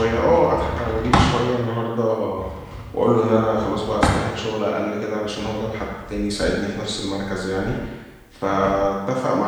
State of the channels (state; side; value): identical; both; correlation 1.00